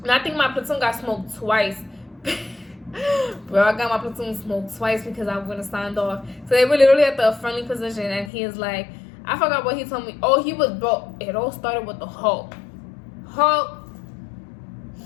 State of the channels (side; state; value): right; drops out; at 8.3 s